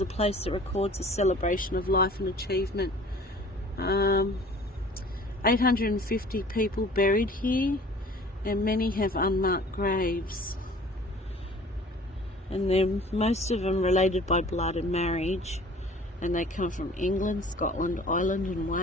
place that records a celebration of life and achievement. 850 people buried here, and many have unmarked graves. And they're most of them related by blood and marriage, and they come from England, Scotland, Ireland and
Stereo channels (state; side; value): normal; both; correlation 0.48